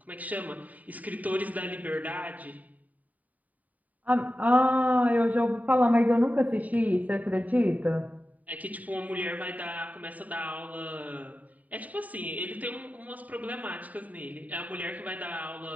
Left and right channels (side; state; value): left; late; 0.074 ms